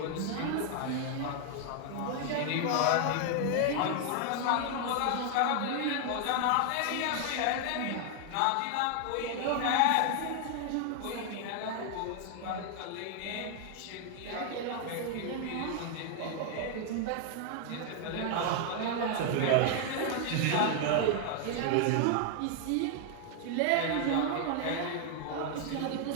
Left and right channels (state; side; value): different; both; correlation 0.00